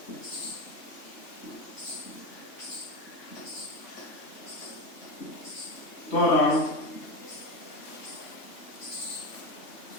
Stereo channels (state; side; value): late; right; 3.1 ms